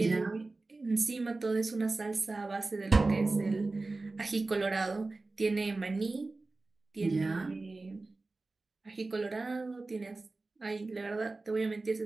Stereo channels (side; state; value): left; quieter; 3.4 dB